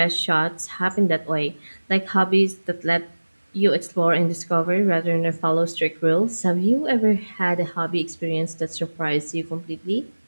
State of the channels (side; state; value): both; inverted; correlation -1.00